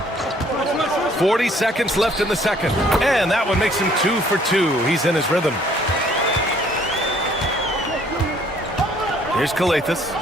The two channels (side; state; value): both; normal; correlation 0.60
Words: 40 seconds left in the second. And that one makes him 2 for 2. He's in his rhythm. Here's Kalathis.